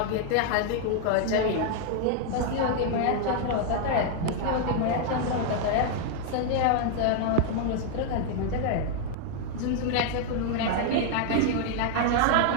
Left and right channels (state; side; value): different; both; correlation 0.00